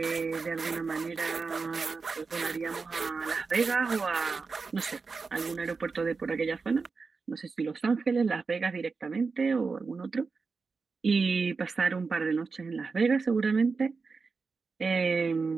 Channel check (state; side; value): quieter; left; 4.6 dB